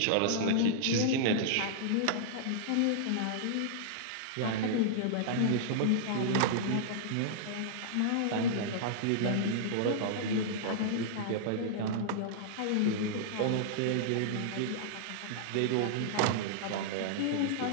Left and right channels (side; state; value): both; different; correlation -0.02